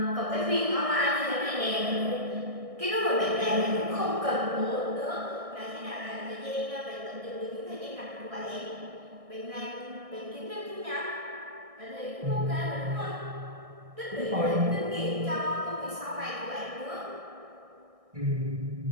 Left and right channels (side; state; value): left; late; 1.6 ms